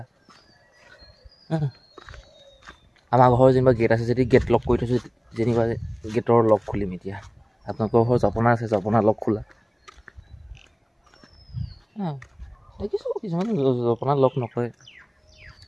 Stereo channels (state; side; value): identical; both; correlation 1.00